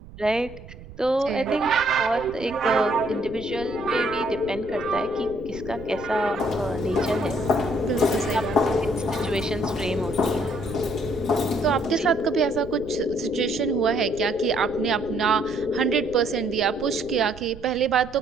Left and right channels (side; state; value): right; noise; rumble, 17 dB below the sound